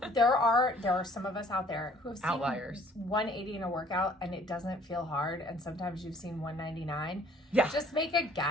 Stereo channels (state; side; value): normal; both; correlation 0.56